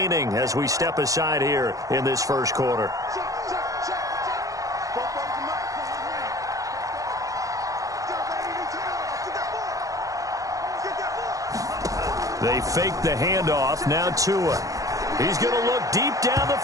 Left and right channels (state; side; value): late; left; 0.17 ms